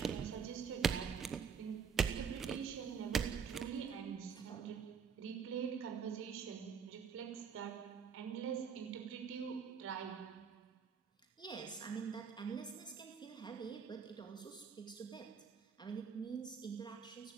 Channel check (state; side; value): quieter; left; 6.6 dB